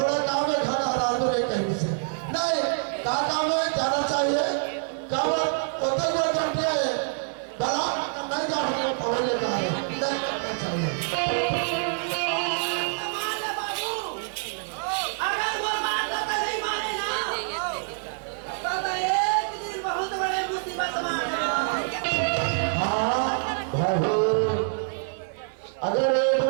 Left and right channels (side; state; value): left; silent; digital silence